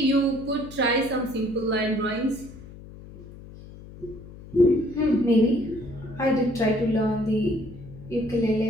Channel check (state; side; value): noise; left; hum, 17 dB below the sound